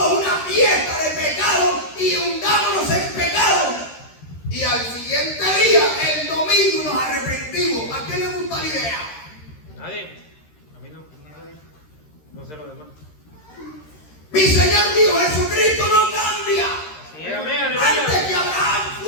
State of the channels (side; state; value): right; late; 13 ms